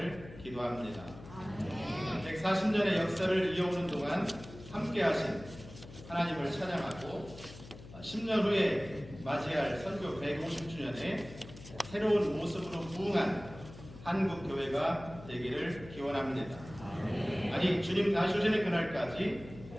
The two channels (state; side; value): noise; left; hum, 16 dB below the sound